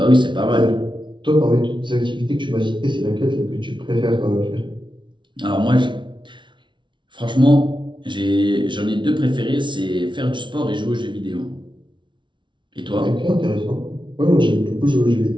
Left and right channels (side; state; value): left; late; 0.24 ms